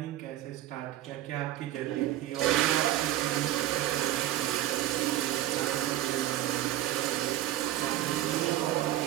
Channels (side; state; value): left; quieter; 13.7 dB